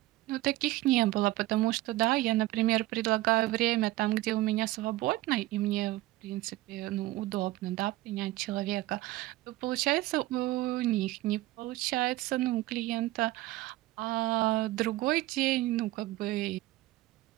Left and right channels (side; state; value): left; quieter; 17.3 dB